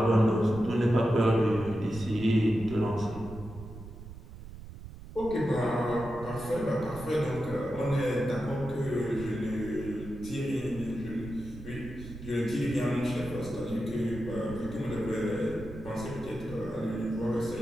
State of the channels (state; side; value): noise; right; rumble, 13 dB below the sound